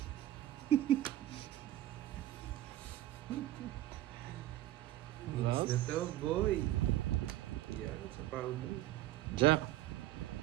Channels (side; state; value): left; quieter; 14.4 dB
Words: Hits na to, boy. Yan, sa pao mo. Jack.